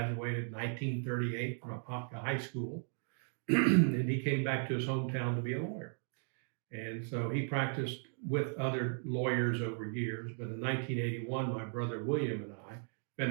in 1938 from Apopka High School, and he came back to his hometown to be a lawyer. And so he practiced with other lawyers over years. But in 1981, my brother William and I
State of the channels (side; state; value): left; silent; 54 dB below the other